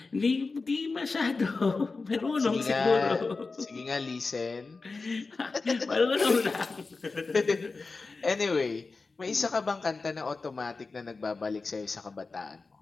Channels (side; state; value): right; quieter; 4.0 dB